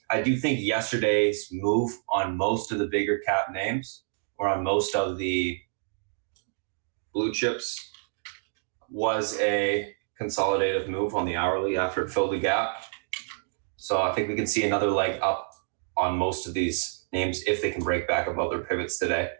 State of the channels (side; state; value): left; silent; digital silence